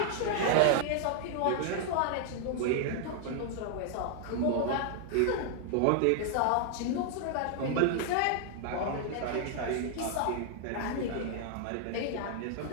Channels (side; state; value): both; different; correlation 0.00